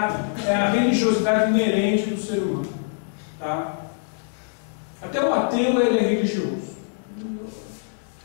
religiosidade inerente do ser humano. Tá? Até o ateu ele é religioso.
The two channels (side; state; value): right; silent; digital silence